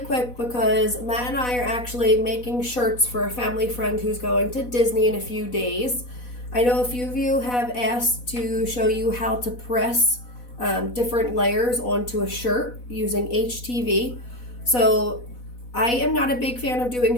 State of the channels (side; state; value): right; late; 4.1 ms